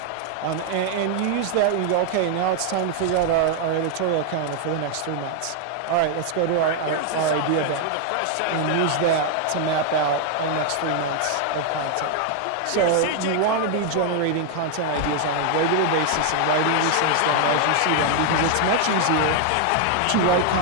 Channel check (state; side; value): different; both; correlation 0.00